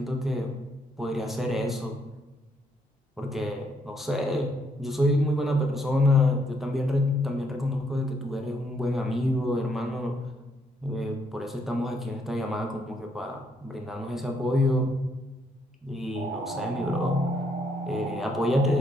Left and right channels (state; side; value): normal; both; correlation 0.73